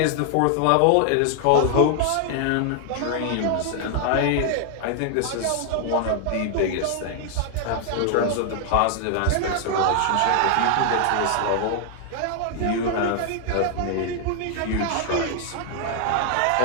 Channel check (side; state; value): both; different; correlation 0.00